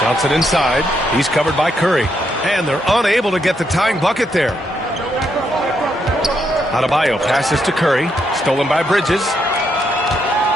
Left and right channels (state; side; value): normal; both; correlation 0.78